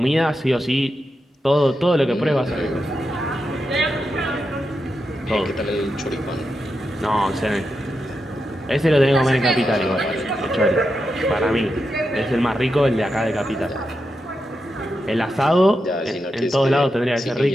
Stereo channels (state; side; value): normal; both; correlation 0.87